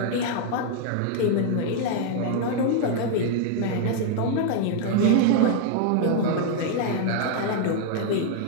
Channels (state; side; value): different; both; correlation -0.01